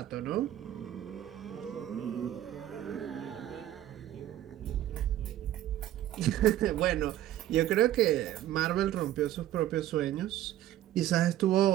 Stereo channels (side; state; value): left; quieter; 13.0 dB